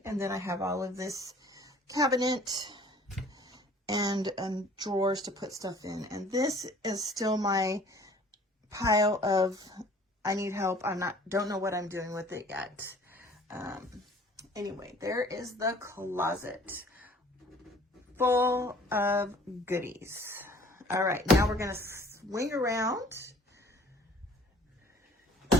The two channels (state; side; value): normal; both; correlation 0.51